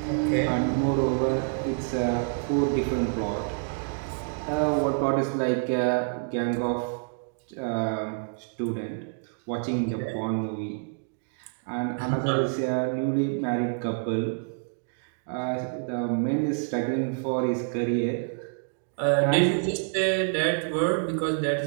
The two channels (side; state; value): left; silent; digital silence